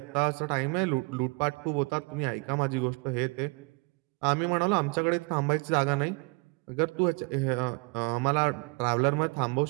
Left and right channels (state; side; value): quieter; left; 30.0 dB